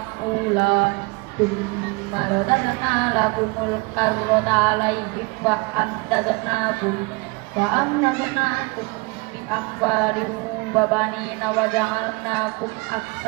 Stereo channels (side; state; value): left; quieter; 27.6 dB